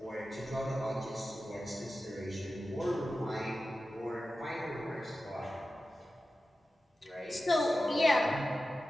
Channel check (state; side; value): normal; both; correlation 0.94